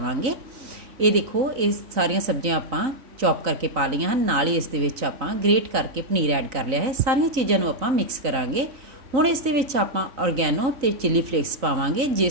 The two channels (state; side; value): late; left; 3.9 ms